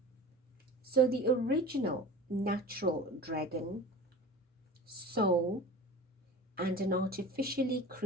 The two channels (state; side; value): normal; both; correlation 0.36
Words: So the original natural dragon, soul, and an artificially